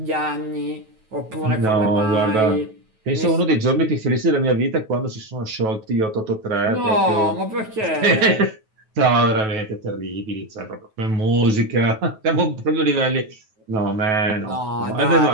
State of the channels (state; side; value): late; left; 9.2 ms